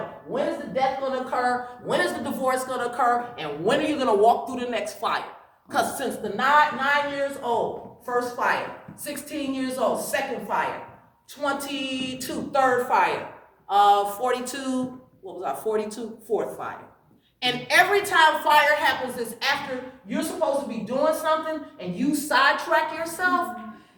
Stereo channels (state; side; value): identical; both; correlation 1.00